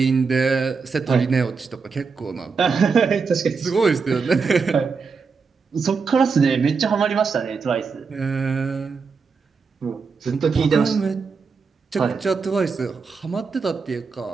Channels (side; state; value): left; quieter; 5.1 dB